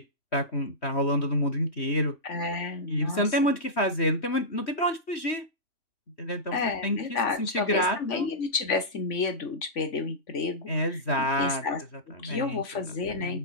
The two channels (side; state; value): right; late; 3.5 ms